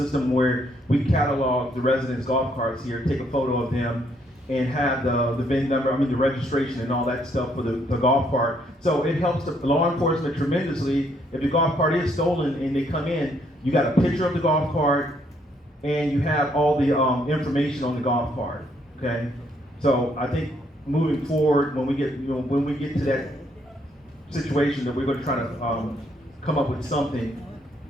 where we catalog the residents' golf carts here, take a photo of them, and have the VIN number, the registration and all that stuff for the golf cart. So it helps the law enforcement tremendously. If the golf cart is stolen and they come in, you got a picture of the golf cart and you have all the information on the golf cart, okay? So I think moving forward, when we get to that situation, that we're going to try to come up with something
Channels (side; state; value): both; normal; correlation 0.70